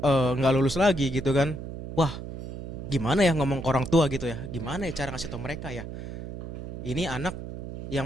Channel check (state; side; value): noise; right; hum, 8 dB below the sound